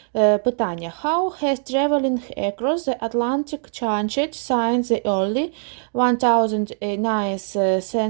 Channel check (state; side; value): silent; left; digital silence